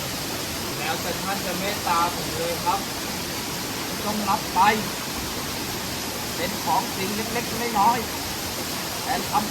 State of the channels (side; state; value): both; identical; correlation 1.00